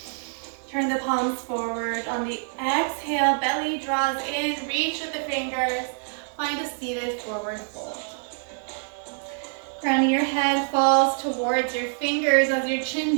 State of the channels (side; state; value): left; silent; 60 dB below the other